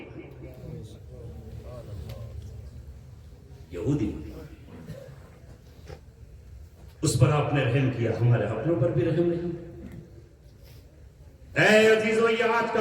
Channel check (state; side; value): identical; both; correlation 1.00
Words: یہودی اس پر آپ نے رحم کیا، ہمارے اپنوں پر بھی رحم نہیں۔ اے عزیزو، یہ آج